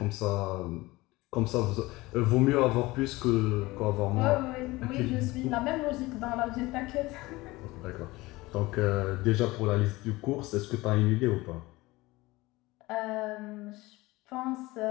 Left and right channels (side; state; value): right; quieter; 20.5 dB